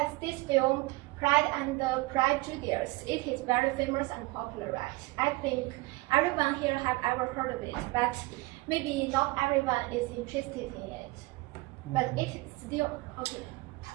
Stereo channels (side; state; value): left; quieter; 22.5 dB